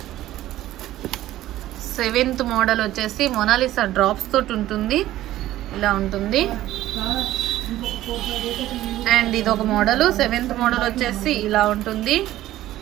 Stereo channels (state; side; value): quieter; left; 14.5 dB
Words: 7th మోడల్ వచ్చేసి మొనాలిసా డ్రాప్స్ తోటి ఉంటుంది, ఇలా ఉంటుంది. అండ్ ఇది ఒక మోడల్. 7th మోడల్ వచ్చేసి ఇలా ఉంటుంది.